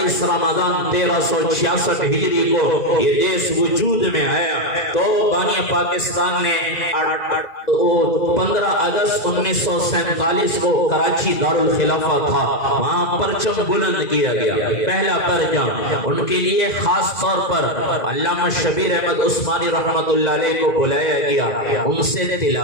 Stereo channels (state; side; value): late; right; 2.0 ms